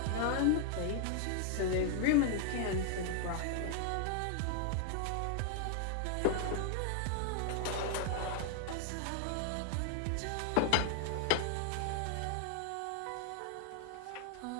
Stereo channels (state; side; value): different; both; correlation 0.00